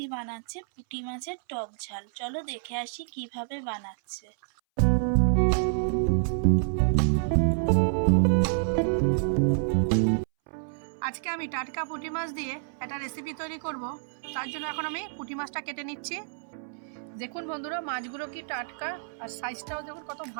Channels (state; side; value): silent; left; 59 dB below the other